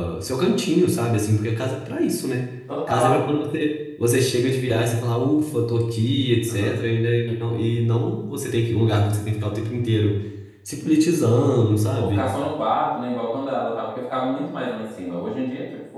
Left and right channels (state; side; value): identical; both; correlation 1.00